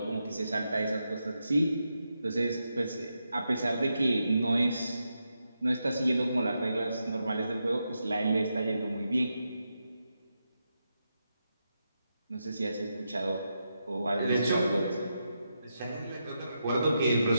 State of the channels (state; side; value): inverted; both; correlation -0.85